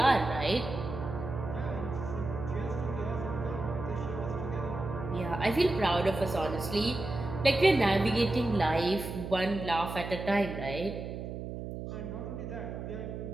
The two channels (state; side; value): noise; right; hum, 7 dB below the sound